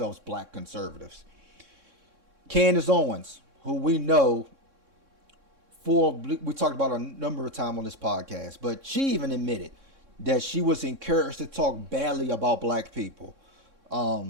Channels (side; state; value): left; late; 3.6 ms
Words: black conservatives. Candance Owens, who we know, we talked about a number of times on this podcast, but she even admitted that she was encouraged to talk badly about black people.